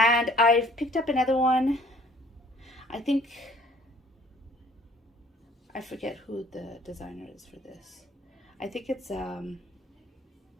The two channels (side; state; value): both; normal; correlation 0.56